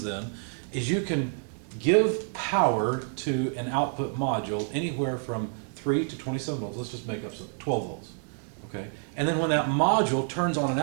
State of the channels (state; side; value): silent; left; 58 dB below the other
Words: then is you can give power to an output module anywhere from 3 to 27 volts. Let's just make up some 12 volts. Okay? And then when that module turns on an